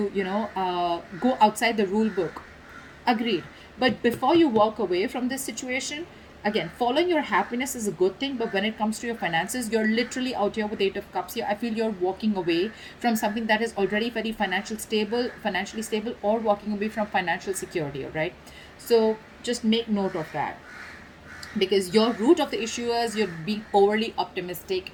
go outside the rule book. Agreed. But before you walk away from this situation, Again, following your happiness is a good thing, but when it comes to your finances, you're literally out here with 8 of cups here. I feel you're walking away from something that is already very financially stable, or walking away from financial security. All right, so just make note of that, because your root of the issue is you're being overly optimistic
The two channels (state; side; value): identical; both; correlation 1.00